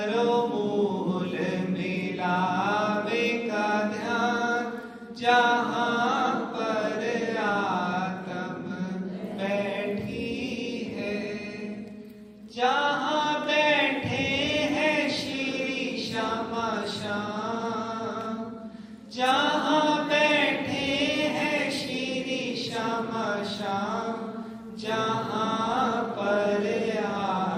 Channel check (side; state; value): both; identical; correlation 1.00